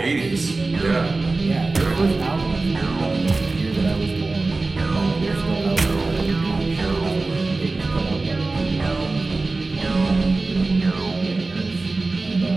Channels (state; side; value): quieter; left; 3.5 dB